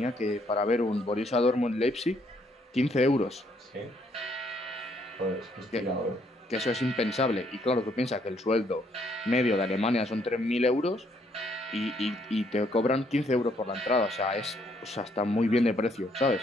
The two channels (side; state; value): both; normal; correlation 0.69